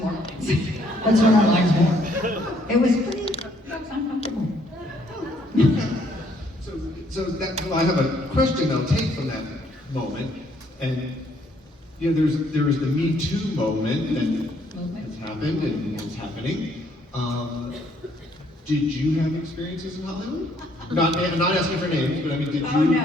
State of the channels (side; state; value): both; normal; correlation 0.67